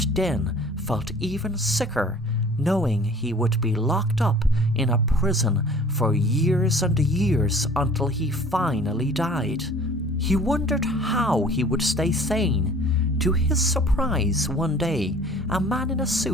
then felt even sicker, knowing he would be locked up in a prison for years and years until he finally died. He wondered how he would stay sane. To his surprise, one day, a man in a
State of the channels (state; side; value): normal; both; correlation 0.49